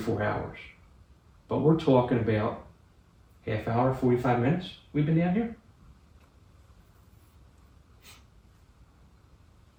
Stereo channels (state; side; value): identical; both; correlation 1.00